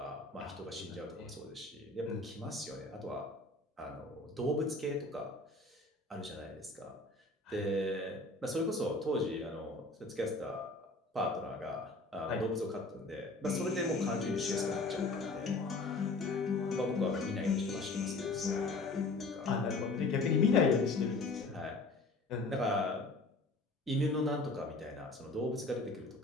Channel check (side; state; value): right; quieter; 3.2 dB